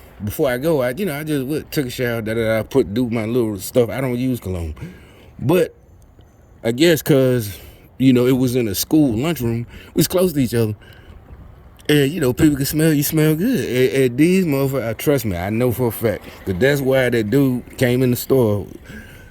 before I go, I just took a shower. Do my little stuff. I don't use cologne, but I guess because. It was in a school lunchroom. We was close to each other. And, people can smell you smell good. And these motherfuckers, trust me, I know for a fact. Because that's why that dude came in the store,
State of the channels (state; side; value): identical; both; correlation 1.00